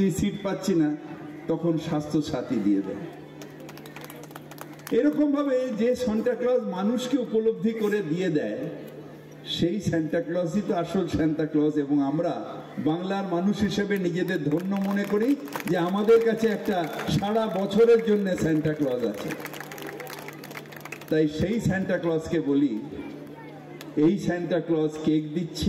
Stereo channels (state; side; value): identical; both; correlation 1.00